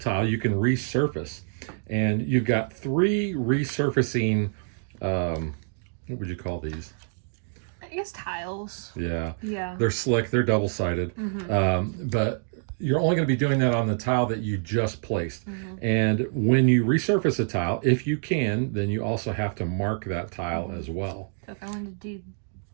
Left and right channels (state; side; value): silent; left; digital silence